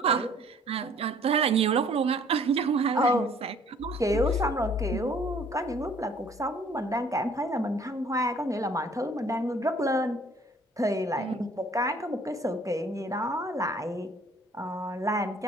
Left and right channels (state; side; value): normal; both; correlation 0.56